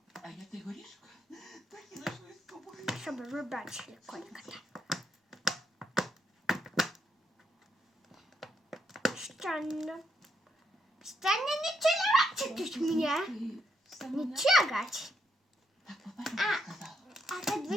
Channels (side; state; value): both; normal; correlation 0.78